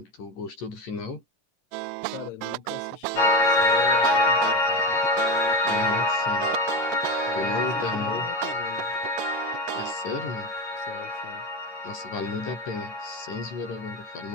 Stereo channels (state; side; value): late; right; 11 ms